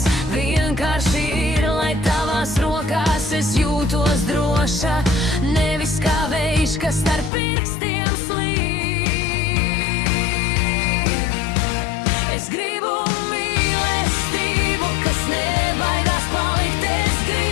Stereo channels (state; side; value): drops out; right; at 7.3 s